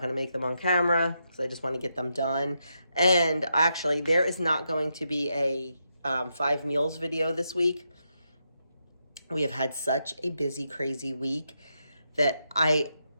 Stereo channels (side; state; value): both; inverted; correlation -0.83